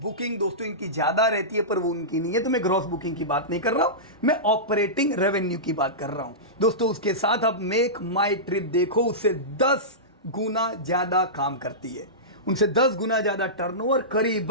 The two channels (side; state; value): both; normal; correlation -0.17